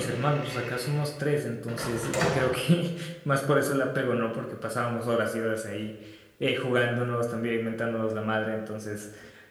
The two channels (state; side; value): identical; both; correlation 1.00